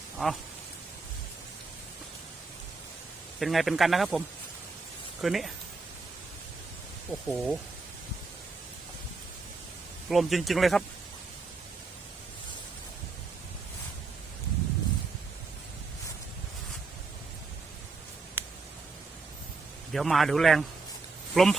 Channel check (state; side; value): quieter; left; 4.0 dB